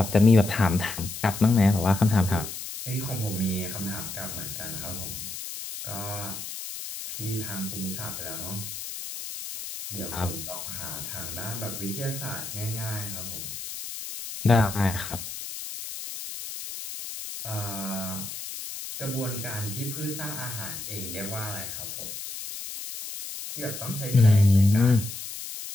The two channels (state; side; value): noise; left; hiss, 8 dB below the sound